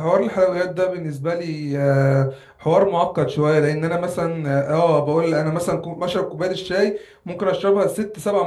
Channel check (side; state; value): both; identical; correlation 1.00